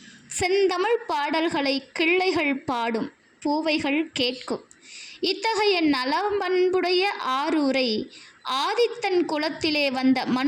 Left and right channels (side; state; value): both; identical; correlation 1.00